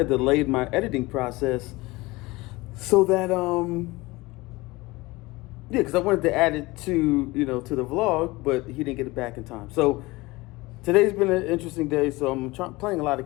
delayed my editing process so that, because I wanted to add it to, to the vlog, but he didn't get it back in time. So today's been an interesting day. So I'm playing a lot of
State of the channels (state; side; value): quieter; right; 21.7 dB